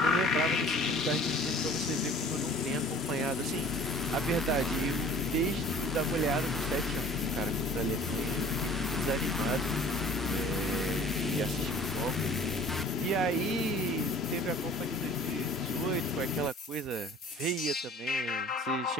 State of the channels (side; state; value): both; normal; correlation 0.49